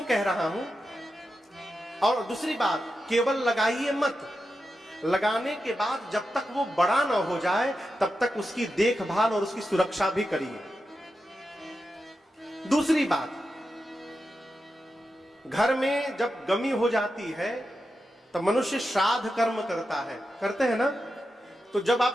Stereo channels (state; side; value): normal; both; correlation 0.89